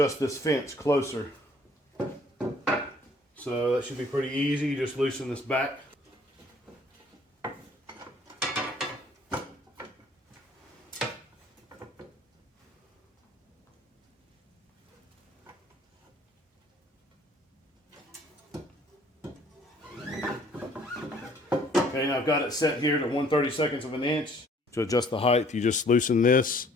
this fence closer. So that should be pretty easy. You just loosen this back. Okay, now I've got it set here to 1/32 of an inch. To adjust the height, you just loosen this,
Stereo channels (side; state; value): both; normal; correlation 0.58